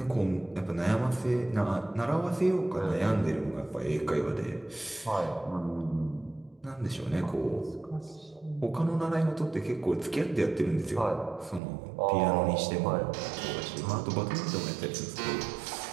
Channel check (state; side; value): drops out; left; at 11.6 s